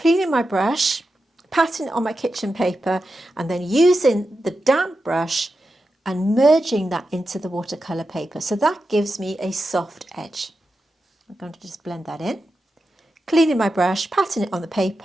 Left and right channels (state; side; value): normal; both; correlation 0.90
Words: my brush, patting it on my kitchen paper, and then using the damp brush and merging that into the watercolour paper. So that gives me a soft edge. I'm going to just blend that in. Cleaning my brush, patting it on the